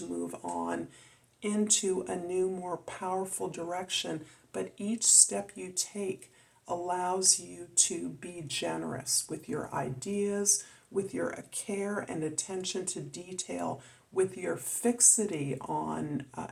move on into a new, more powerful direction. But each step you take allows you to be generous with your ideas, with your care and attention to detail, with your fixity on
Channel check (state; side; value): identical; both; correlation 1.00